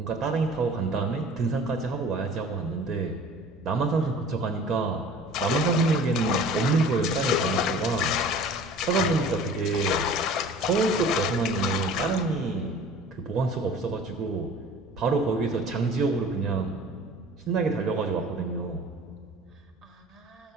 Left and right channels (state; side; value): normal; both; correlation 0.45